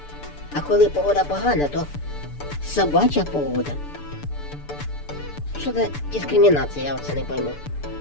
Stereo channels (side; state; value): right; late; 6.9 ms